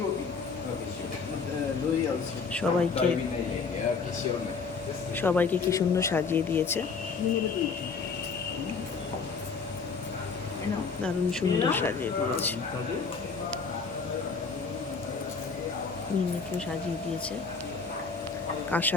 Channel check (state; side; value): quieter; right; 5.0 dB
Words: সবাইকে কি সুন্দর সাজিয়ে দিয়েছে, দারুণ সুন্দর সাজিয়ে দিয়েছে। মিনিকেও সাজিয়ে দিয়েছে,